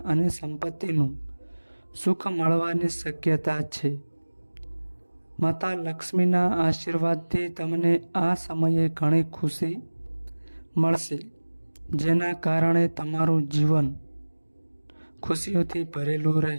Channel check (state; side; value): inverted; both; correlation -1.00